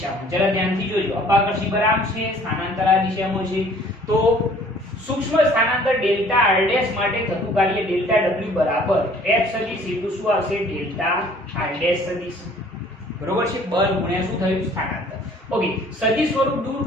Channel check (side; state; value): both; normal; correlation 0.55